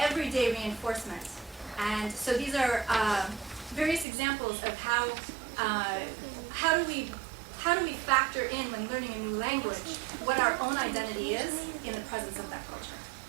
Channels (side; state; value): left; drops out; at 4.0 s